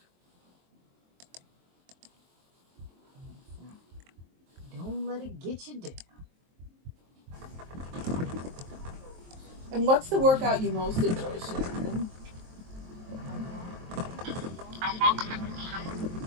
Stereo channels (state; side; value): late; left; 23 ms